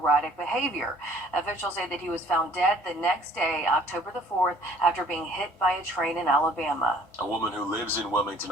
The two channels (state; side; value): normal; both; correlation 0.56